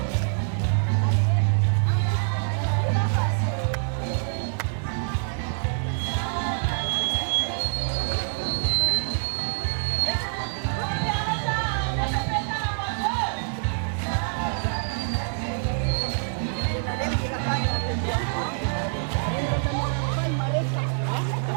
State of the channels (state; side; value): silent; left; 61 dB below the other